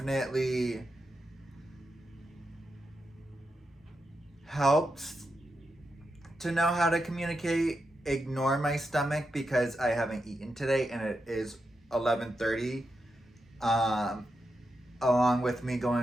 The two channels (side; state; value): both; normal; correlation 0.87